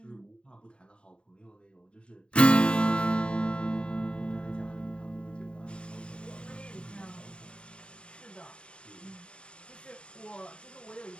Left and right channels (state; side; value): late; right; 0.054 ms